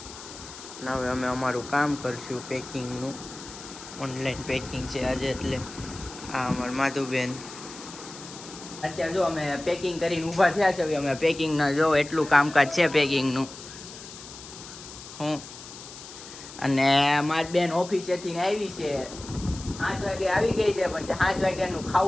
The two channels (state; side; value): noise; left; hiss, 14 dB below the sound